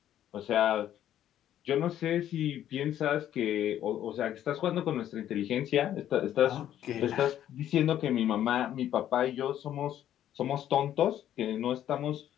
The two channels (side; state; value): right; quieter; 11.3 dB